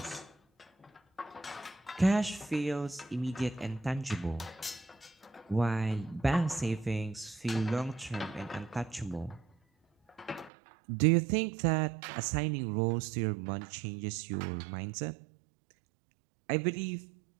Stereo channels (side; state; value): left; drops out; at 10.5 s